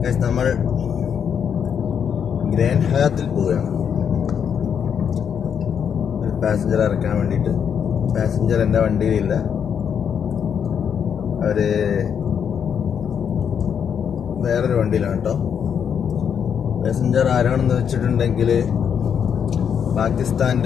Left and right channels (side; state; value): right; quieter; 7.7 dB